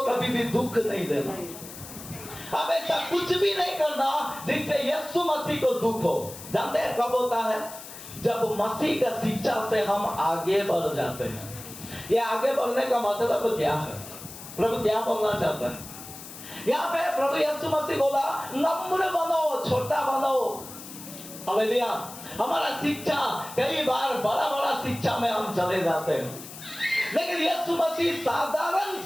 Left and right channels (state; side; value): noise; left; hiss, 14 dB below the sound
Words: कभी भी दुख नहीं देना। अब ऐसा कुछ भी नहीं करना जिससे यीशु मसीह को दुख हो। जानते हैं कब होता है? जब मसीह का शिक्षा से हम आगे बढ़ जाते हैं। ये आगे बढ़ने का मतलब क्या है? प्रभु क्या बोलना चाहता है यहाँ पे? प्रभु यीशु मसीह बोला नम्र बनो, छोटा बनो। हालेलुया। हमारा शिक्षा कई बार बड़ा बड़ा शिक्षा में हम चले जाते हैं, लेकिन यीशु मसीह साधारण